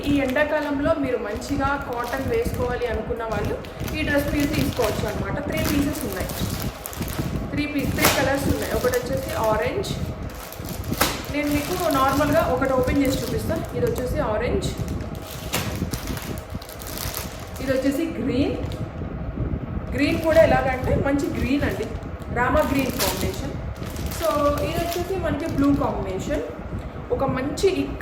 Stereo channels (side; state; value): both; identical; correlation 1.00